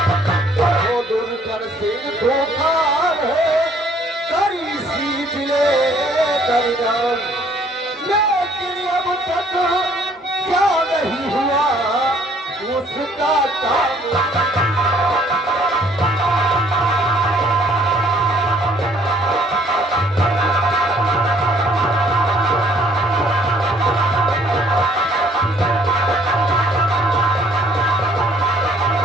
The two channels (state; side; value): normal; both; correlation 0.61